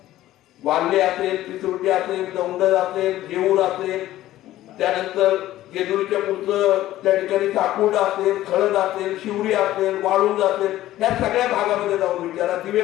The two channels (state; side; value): quieter; right; 14.6 dB